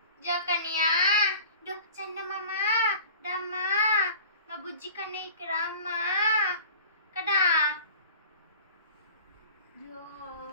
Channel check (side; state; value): both; inverted; correlation -0.42